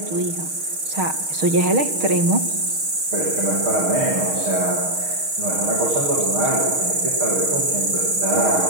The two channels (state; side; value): late; left; 6.4 ms